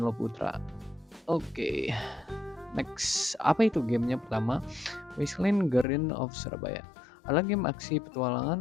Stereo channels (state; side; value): drops out; right; at 5.9 s